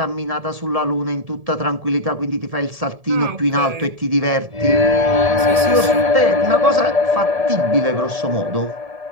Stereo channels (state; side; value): late; left; 1.7 ms